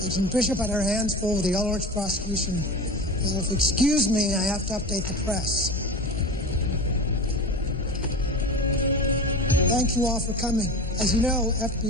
Agent Bishop had her hands full with the Ulrich prosecution. So if you excuse me, I have to update the press. Thank you all for coming. As you know,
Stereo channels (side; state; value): both; normal; correlation 0.30